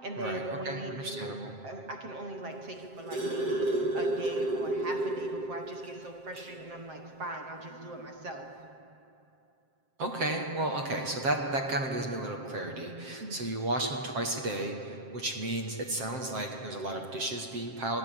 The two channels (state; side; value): late; left; 7.6 ms